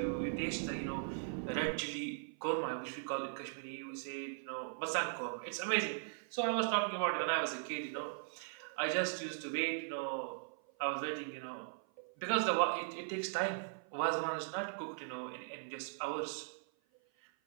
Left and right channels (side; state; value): left; silent; 52 dB below the other